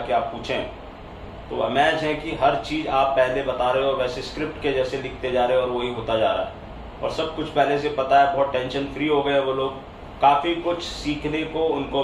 आप पूछें तो अमेज है कि हर चीज़ आप पहले बता रहे हो, वैसे स्क्रिप्ट के जैसे लिखते जा रहे हो और वही होता जा रहा है। और सब कुछ पहले से पता है, बहुत टेंशन फ्री हो गए वो लोग। काफ़ी कुछ सीखने को उनको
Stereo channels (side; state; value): both; identical; correlation 1.00